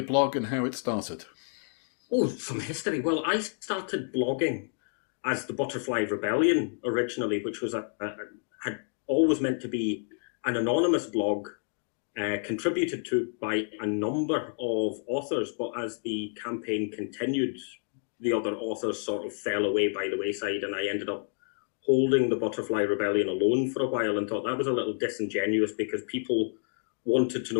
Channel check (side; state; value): right; silent; 58 dB below the other